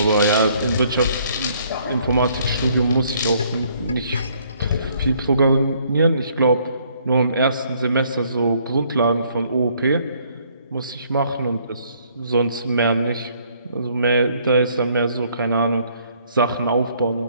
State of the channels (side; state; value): both; inverted; correlation -0.65